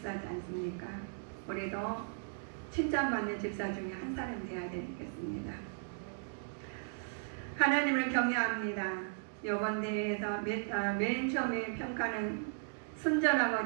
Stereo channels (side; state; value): left; silent; digital silence